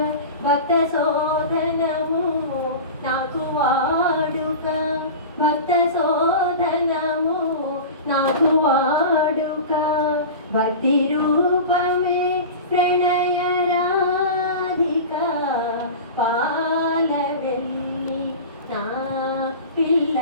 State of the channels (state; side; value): inverted; both; correlation -0.30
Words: భక్త శోధనము నాకు వాడుక, భక్త శోధనము నాకు వాడుక. భక్తి రూపమే ప్రణయ రాధిక, పాలవెల్లి నా